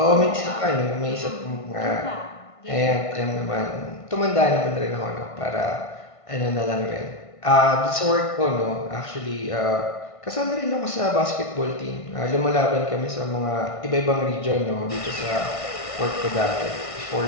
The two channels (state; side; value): late; right; 1.5 ms